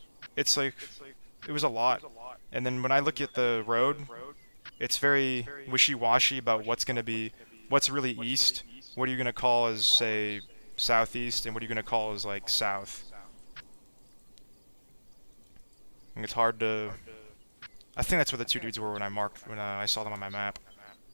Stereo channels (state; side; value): inverted; both; correlation -1.00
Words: It's like... It was a lot. And then when I look at the road, it's very wishy-washy about what's gonna be... What's really east, what are you gonna call as, say, southeast, and what are you gonna call as, like, south? And it's hard to... I think that's where the 2 dudes were when I saw them on my map.